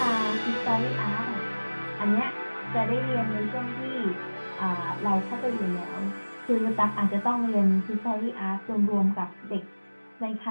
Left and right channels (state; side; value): inverted; both; correlation -1.00